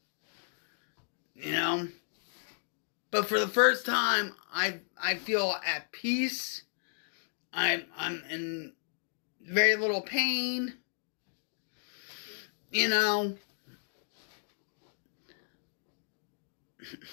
You know? But for the first time, I feel at peace. I'm in very little pain. You know?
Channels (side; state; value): right; silent; digital silence